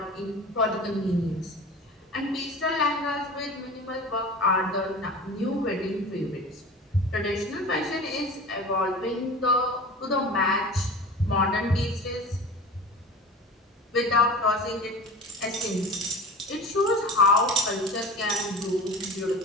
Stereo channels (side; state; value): both; normal; correlation 0.35